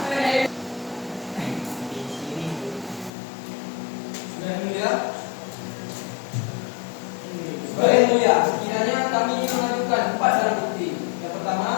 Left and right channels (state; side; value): drops out; right; at 3.1 s